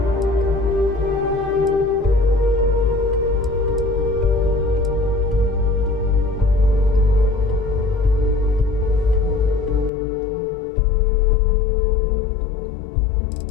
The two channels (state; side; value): drops out; right; at 9.9 s